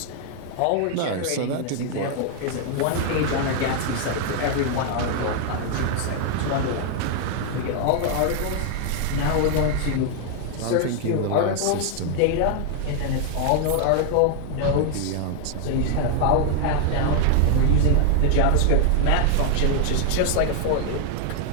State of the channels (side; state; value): both; different; correlation 0.00